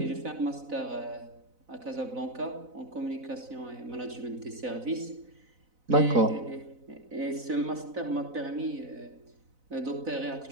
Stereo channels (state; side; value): late; left; 4.0 ms